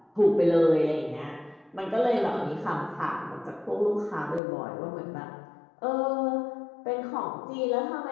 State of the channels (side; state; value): right; drops out; at 4.4 s